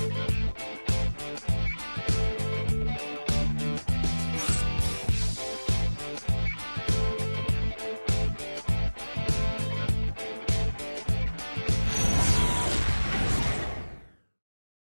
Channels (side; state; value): both; inverted; correlation -1.00